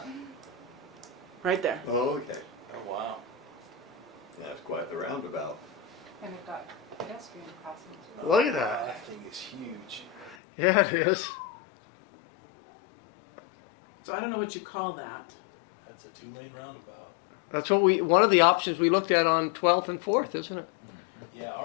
Right there. Oh, okay. Oh, wow. That's quite the roundabout. And we've got pedestrian crossings as well. Look at that. That thing is huge. Yeah, it is. So I don't know what you call that. That's a 2-lane roundabout. That's what one of the options we looked at on 12th and 4th, isn't it? Yeah,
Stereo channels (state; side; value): drops out; right; at 10.4 s